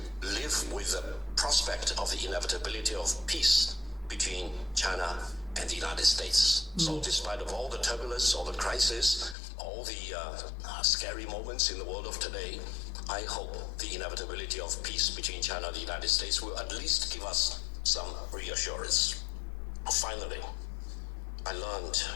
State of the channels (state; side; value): drops out; right; at 9.3 s